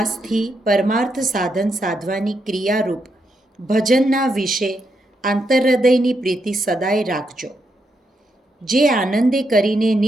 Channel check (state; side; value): normal; both; correlation 0.81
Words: પરમાર્થ સાધન સાધવાની ક્રિયારૂપ ભજનના વિશે આંતરહૃદયની પ્રીતિ સદાય રાખજો. જે આનંદે કરીને